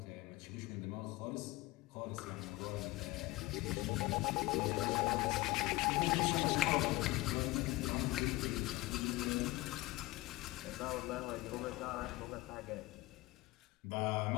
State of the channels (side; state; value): right; quieter; 19.9 dB